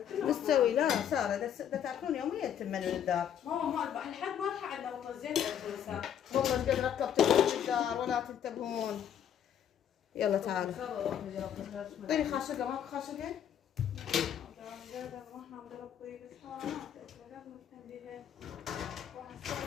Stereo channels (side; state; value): right; quieter; 9.3 dB